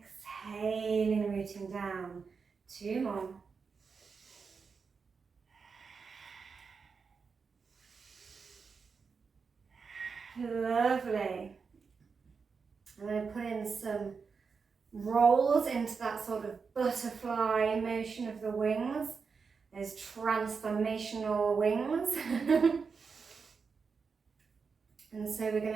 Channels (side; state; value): left; quieter; 5.3 dB